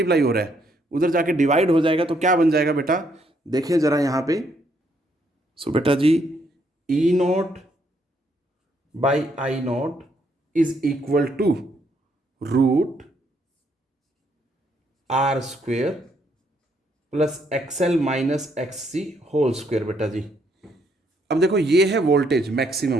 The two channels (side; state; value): both; normal; correlation 0.72